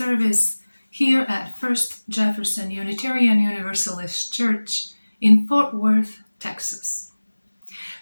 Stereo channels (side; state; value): both; inverted; correlation -1.00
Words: here at First Jefferson Unitarian Universalist Church in Fort Worth, Texas.